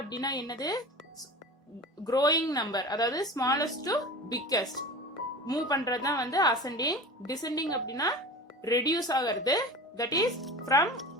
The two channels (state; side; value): normal; both; correlation 0.34